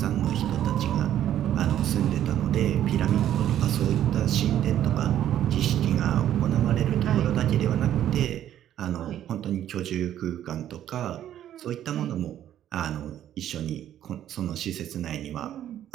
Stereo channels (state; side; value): quieter; left; 11.3 dB